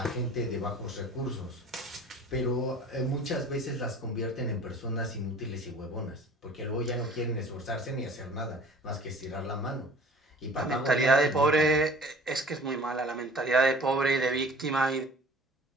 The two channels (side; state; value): both; normal; correlation 0.46